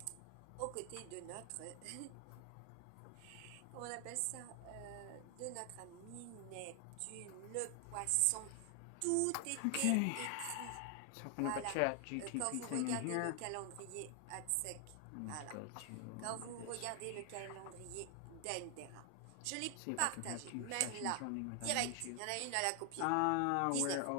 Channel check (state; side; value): different; both; correlation 0.00